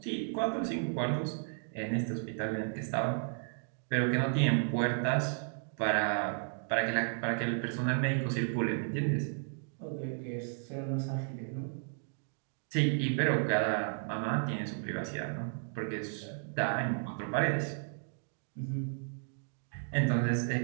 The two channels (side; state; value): left; silent; 55 dB below the other